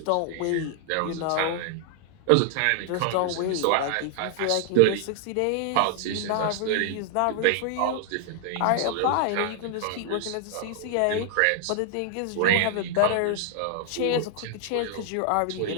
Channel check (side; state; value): both; different; correlation -0.01